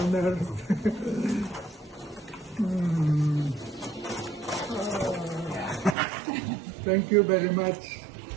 earth. Thank you very much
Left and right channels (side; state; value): left; drops out; at 6.0 s